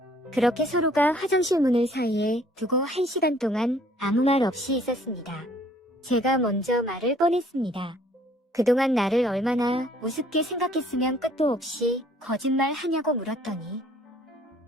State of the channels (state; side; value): normal; both; correlation 0.59